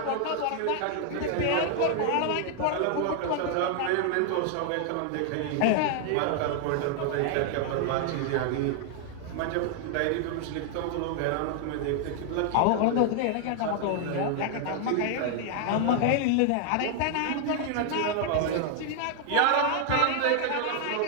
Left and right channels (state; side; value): different; both; correlation 0.00